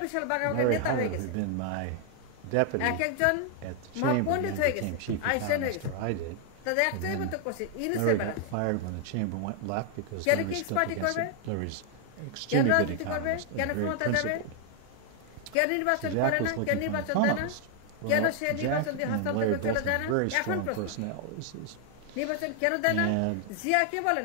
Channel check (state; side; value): different; both; correlation 0.00